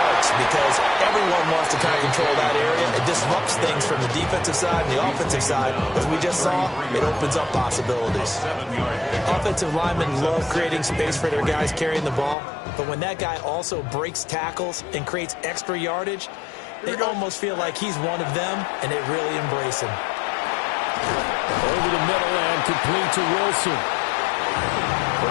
because everyone wants to kind of control that area. It disrupts things from the defensive side and the offensive side. As we just saw, it opens up possibilities. Offensive linemen love creating space for their guys carrying the ball, but when that guy also breaks tackles and creates extra yardage, they almost feel like he's one of them, and they really embrace him. Over the middle and complete to Wilson.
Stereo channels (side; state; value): right; drops out; at 12.4 s